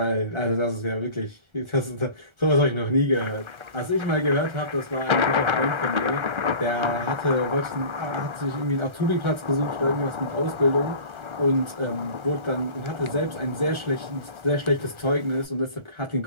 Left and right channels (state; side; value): late; left; 1.3 ms